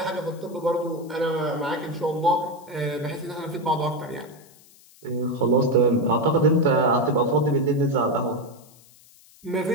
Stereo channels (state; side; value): noise; left; hiss, 26 dB below the sound